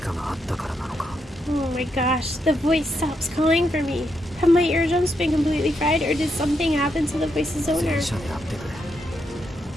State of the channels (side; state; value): both; normal; correlation 0.80